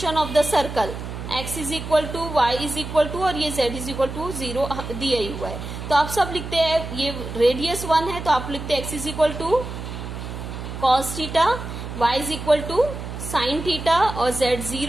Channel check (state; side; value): noise; right; hum, 8 dB below the sound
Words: of the circle, x is equal to y is equal to और ये z is equal to 0 दिया ही हुआ है। तो आप सब लिखते हैं, ये रेडियस 1 है तो आप लिखते हैं x is equal to cos theta, y is equal to sine theta और z